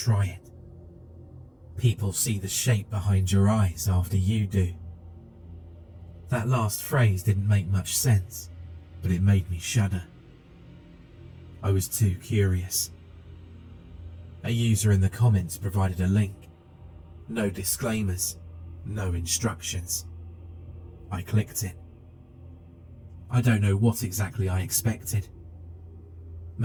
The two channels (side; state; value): both; identical; correlation 1.00